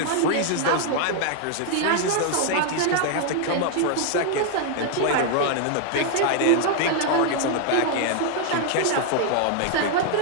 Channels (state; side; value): different; both; correlation 0.00